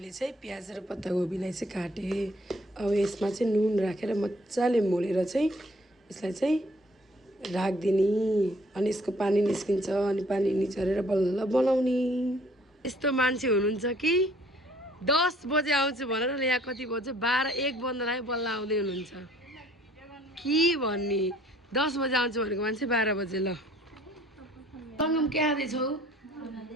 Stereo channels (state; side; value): normal; both; correlation 0.58